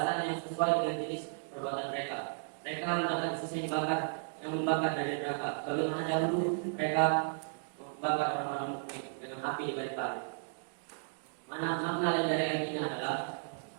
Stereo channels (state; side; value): silent; left; digital silence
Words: yang sesuai dengan jenis perbuatan mereka. Mereka mendapatkan sisa yang membakar dari neraka. Bagaimana dahulu mereka membakar orang-orang mukmin dengan api di balik-balik. Makna lain dari ayat ini adalah